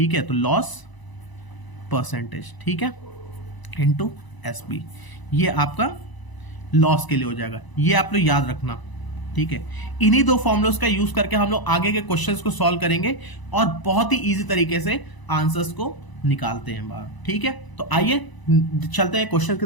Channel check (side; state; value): right; late; 1.0 ms